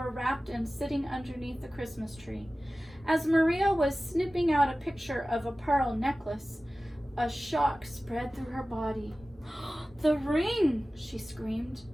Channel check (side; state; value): both; normal; correlation 0.96